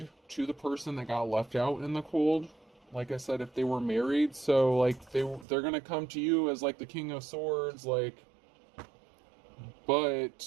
to the person that got left out in the cold. Like I said, if they were married, so like they're gonna come to you as like the King of Swords,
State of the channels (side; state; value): left; drops out; at 5.5 s